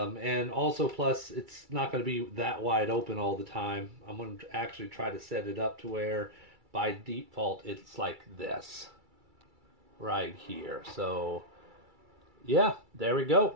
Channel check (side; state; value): left; late; 2.3 ms